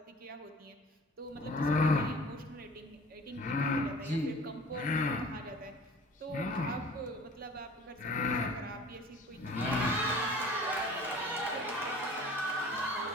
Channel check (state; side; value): normal; both; correlation 0.45